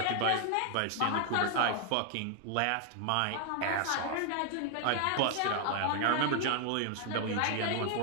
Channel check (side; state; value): both; different; correlation 0.00